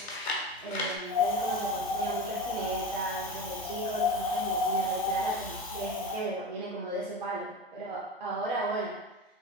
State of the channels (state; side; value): normal; both; correlation 0.27